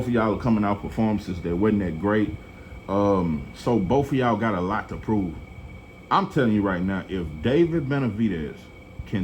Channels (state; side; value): identical; both; correlation 1.00